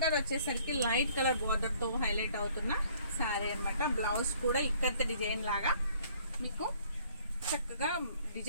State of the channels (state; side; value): inverted; both; correlation -0.59